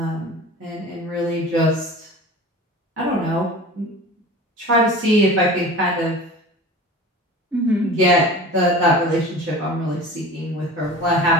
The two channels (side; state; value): both; normal; correlation 0.37